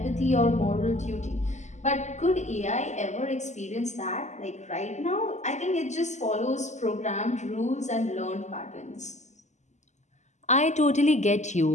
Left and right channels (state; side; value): late; right; 0.34 ms